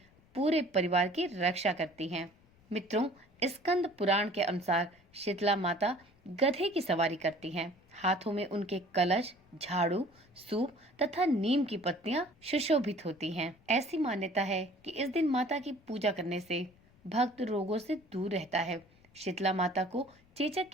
पूरे परिवार की रक्षा करती हैं। मित्रों, स्कंद पुराण के अनुसार शीतला माता गधे की सवारी करती हैं। हाथों में उनके कलश, झाड़ू, सूप तथा नीम की पत्तियां सुशोभित होती हैं। ऐसी मान्यता है कि इस दिन माता की पूजा करने से भक्त रोगों से दूर रहता है। शीतला माता को चेचक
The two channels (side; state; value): left; noise; rumble, 30 dB below the sound